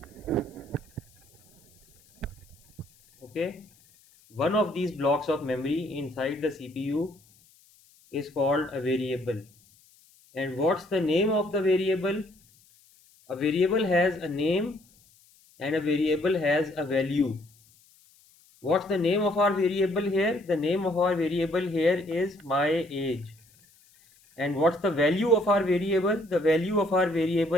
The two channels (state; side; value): noise; left; hiss, 30 dB below the sound